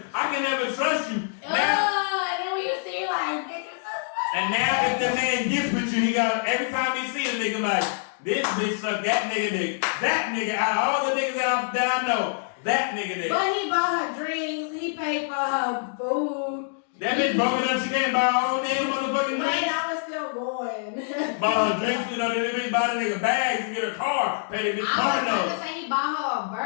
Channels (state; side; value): silent; right; digital silence